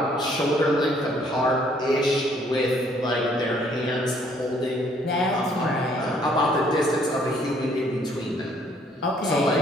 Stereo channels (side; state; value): both; normal; correlation 0.64